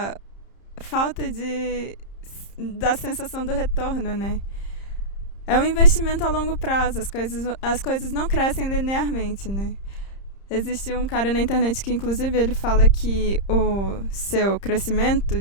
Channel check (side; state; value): right; late; 30 ms